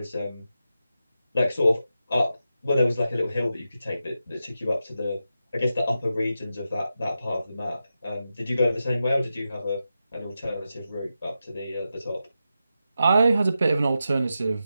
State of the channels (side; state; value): both; inverted; correlation -0.89